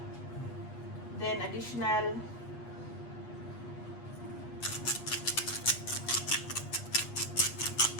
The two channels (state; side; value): late; right; 8.4 ms